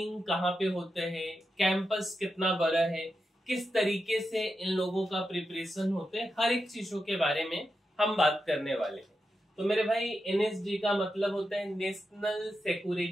कहाँ पे होता है, कैंपस कितना बड़ा है, किस तरीके से इन लोगों का प्रिपरेशन होता है, हर एक चीजों के बारे में हम बात करने वाले हैं। तो मेरे भाई, एनएसजी का मतलब होता है नेशनल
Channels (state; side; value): normal; both; correlation 0.88